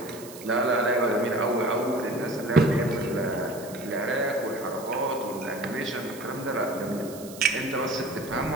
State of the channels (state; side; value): noise; right; hiss, 16 dB below the sound